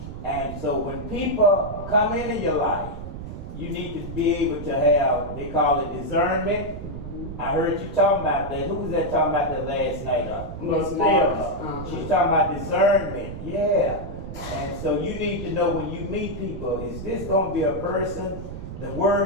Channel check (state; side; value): noise; right; rumble, 9 dB below the sound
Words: And so when people come into your life, you need to be able to have, they call it discernment. I heard you talking about that. Who was that talking about that last night? She's talking about discernment. Yeah. And so you need to know when you meet people, is this going to be a person? The